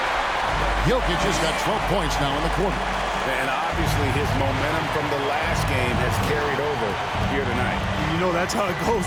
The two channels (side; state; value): both; identical; correlation 1.00